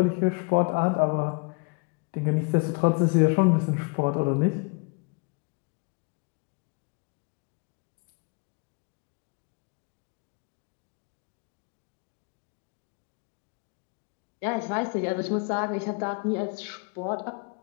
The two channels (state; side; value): quieter; right; 33.0 dB